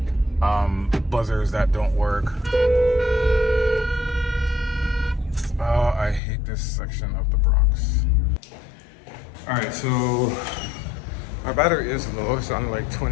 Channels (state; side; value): drops out; right; at 6.2 s